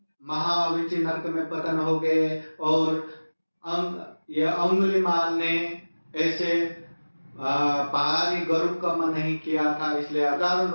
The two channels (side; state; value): both; inverted; correlation -1.00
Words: महाविचि नरक में पतन हो गए। और अंगुलीमाल ने ऐसे भारी गरुड़ कर्म नहीं किया था, इसलिए हजारों